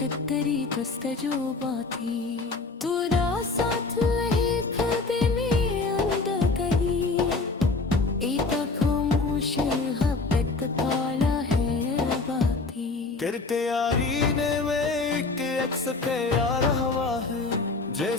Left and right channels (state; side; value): quieter; right; 3.8 dB